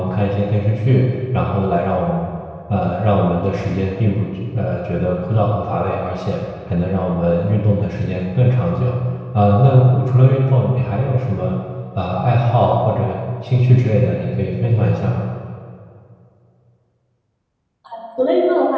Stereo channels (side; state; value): both; identical; correlation 1.00